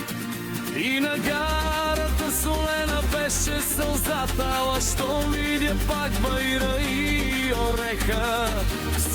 И на гарата солена беше сълзата, ала щом видя пак байра и ореха,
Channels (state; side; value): identical; both; correlation 1.00